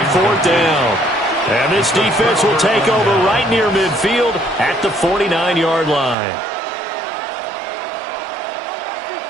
fourth down. And this defense will take over right near midfield at the 49-yard line.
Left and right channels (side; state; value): left; drops out; at 6.2 s